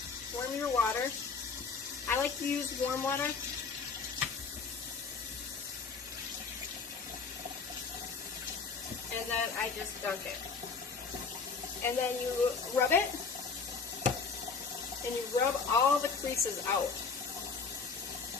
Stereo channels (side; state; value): right; quieter; 5.1 dB